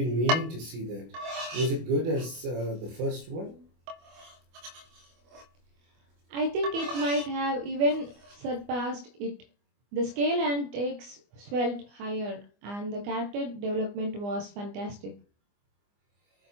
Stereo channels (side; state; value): left; late; 25 ms